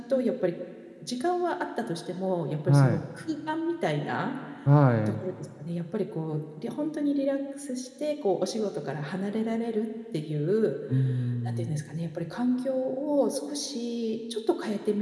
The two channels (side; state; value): both; identical; correlation 1.00